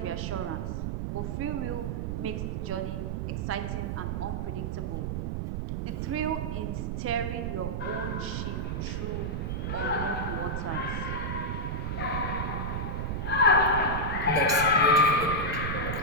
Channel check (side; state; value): right; noise; rumble, 1 dB below the sound